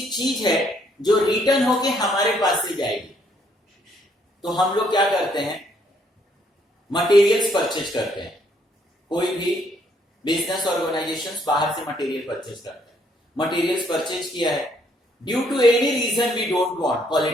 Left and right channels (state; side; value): normal; both; correlation 0.69